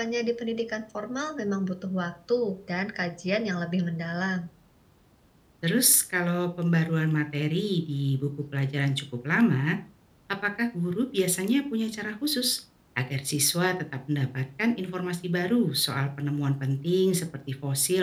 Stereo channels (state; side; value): identical; both; correlation 1.00